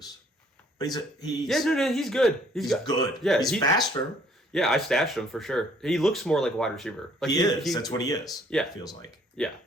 But he's he's good. He's good. Yeah, he's faster. Yeah, I stashed him for sure. He looks more like a wide receiver. Like he is. That's what he is. Yeah, it feels like. Yeah,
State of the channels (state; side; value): normal; both; correlation 0.61